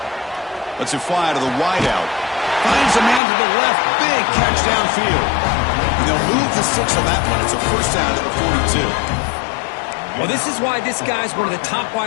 Lets it fly to the wideout. Finds a man to the left. Big catch downfield. And they'll move the 6 on that one. It's a 1st down to the 42. Well, this is why this guy's one of the top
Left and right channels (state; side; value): drops out; right; at 3.2 s